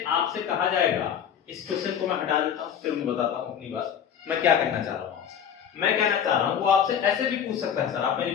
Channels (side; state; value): right; quieter; 8.5 dB